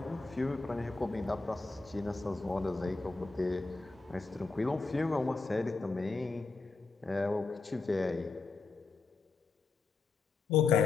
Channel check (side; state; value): right; quieter; 4.0 dB